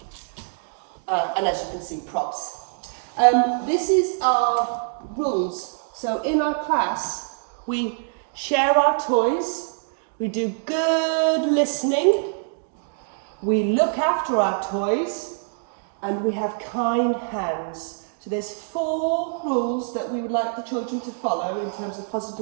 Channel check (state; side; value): silent; left; digital silence